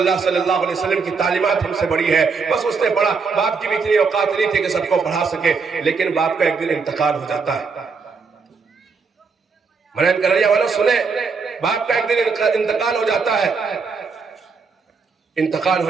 صلی اللہ علیہ وسلم کی تعلیمات ہم سے بڑی ہے۔ بس اس نے پڑھا، باپ کی بھی اتنی اوقات نہیں تھی کہ سب کو پڑھا سکے، لیکن باپ کا ایک دن انتقال ہو جاتا ہے۔ منعین کریا والوں سنیں، باپ کا ایک دن انتقال ہو جاتا ہے۔ انتقال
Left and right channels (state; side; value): quieter; left; 5.0 dB